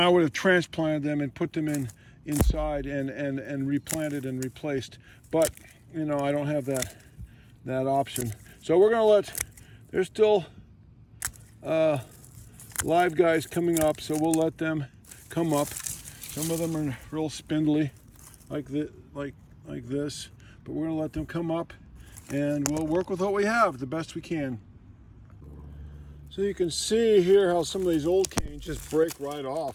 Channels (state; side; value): identical; both; correlation 1.00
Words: would have transplanted them and put them inside and replanted and replaced. But I don't have that option. So we're gonna there's still live guys coming up, so we'll let them come up. Some of them are real spindly, like this, but we're gonna let them come up, and we'll work with what we have the best we can. So you can see here how some of these old canes just break right